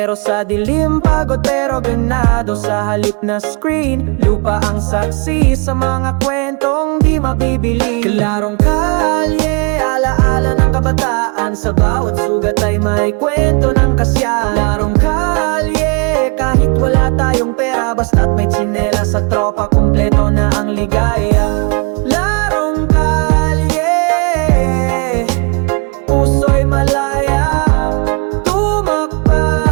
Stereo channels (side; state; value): left; quieter; 33.2 dB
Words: sa dilim, pagod pero ganado. Sa halip na screen, lupa ang saksi sa mga kwentong di mabibili. Klarong kalye, alaala ng kabataan, sa bawat sugat ay may kwento ng kasya. Larong kalye, kahit wala tayong pera, basta't may tsinela sa tropa, kumpleto na ang ligaya. Larong kalye, puso'y malaya,